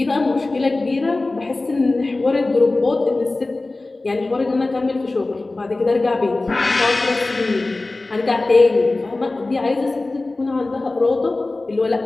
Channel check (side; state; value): right; quieter; 3.1 dB